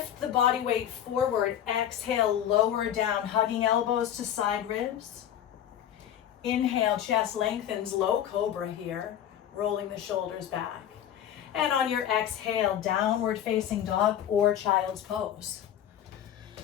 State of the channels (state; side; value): quieter; right; 10.4 dB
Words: the body weight forward. Exhale, lower down, hugging elbows to side ribs. Inhale, chest lengthens, low cobra here, rolling the shoulders back. And on your exhale, downward facing dog or child's pose.